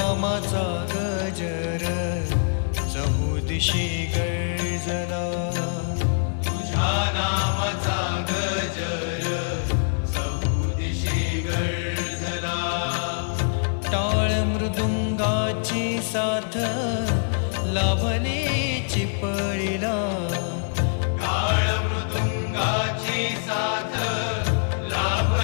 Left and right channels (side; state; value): right; silent; digital silence